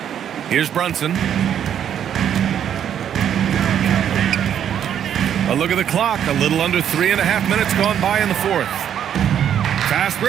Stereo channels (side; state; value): left; quieter; 9.4 dB